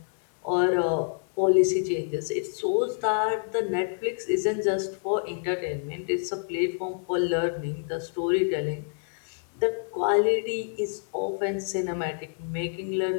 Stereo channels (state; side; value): silent; right; digital silence